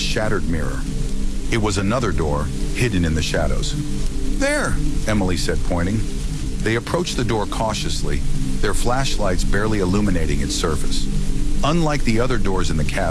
mirror. It was another door, hidden in the shadows. "There," Emily said, pointing. They approached the door cautiously, their flashlights barely illuminating its surface. Unlike the other doors in the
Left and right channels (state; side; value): identical; both; correlation 1.00